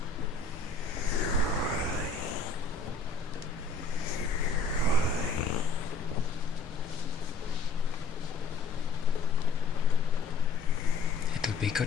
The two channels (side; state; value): right; quieter; 3.9 dB